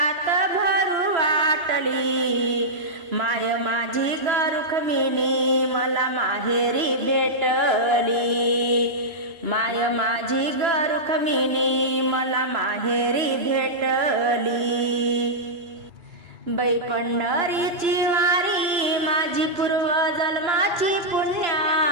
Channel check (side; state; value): left; late; 2.9 ms